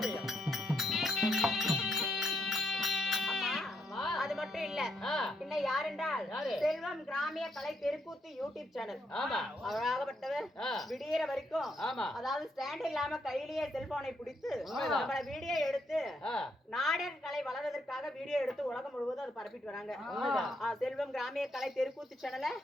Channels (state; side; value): normal; both; correlation 0.77